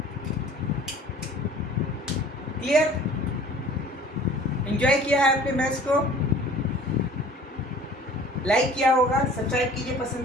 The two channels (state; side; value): normal; both; correlation 0.48